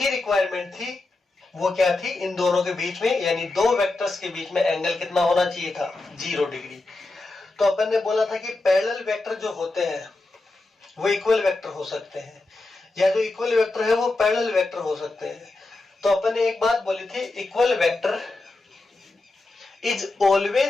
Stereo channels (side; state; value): right; quieter; 3.1 dB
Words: रिक्वायरमेंट थी, वो क्या थी, इन दोनों के बीच में यानी दो वेक्टर्स के बीच में एंगल कितना होना चाहिए था, 0 डिग्री। तो अपन ने बोला था कि पैरेलल वेक्टर जो होते हैं वो इक्वल वेक्टर हो सकते हैं, या जो इक्वल वेक्टर है वो पैरेलल वेक्टर हो सकते हैं। तो अपन ने एक बात बोली थी, equal vector is